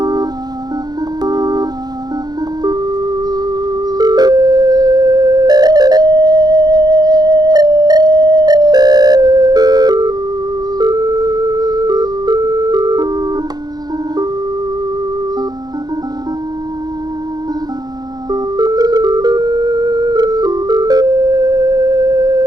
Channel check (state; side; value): late; left; 0.19 ms